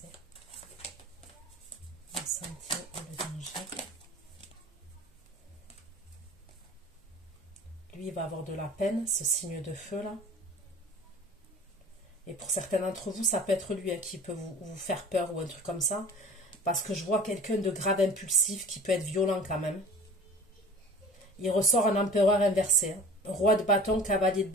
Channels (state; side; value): normal; both; correlation 0.41